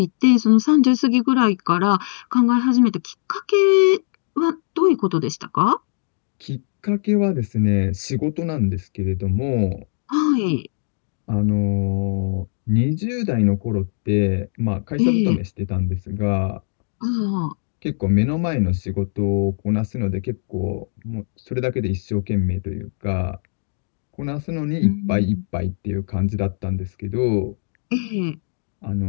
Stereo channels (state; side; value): silent; right; 65 dB below the other